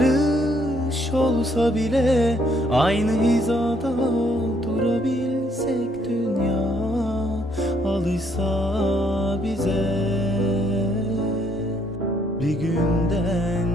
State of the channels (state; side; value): normal; both; correlation 0.68